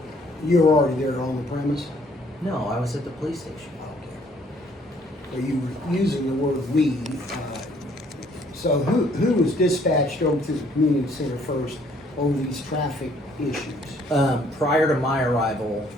You were already there on the premise? No, I was at the police station. Okay. So you were using the word "we." So who was dispatched over to the community center first over these traffic issues? Prior to my arrival,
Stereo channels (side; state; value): both; normal; correlation 0.62